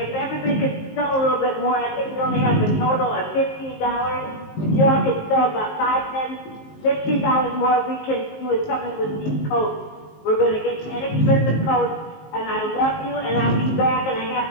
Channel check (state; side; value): late; right; 19 ms